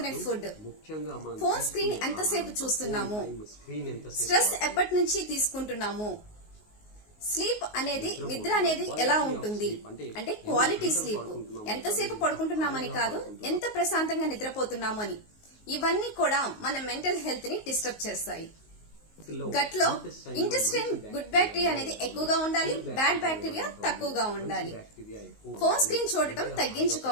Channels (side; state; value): right; late; 19 ms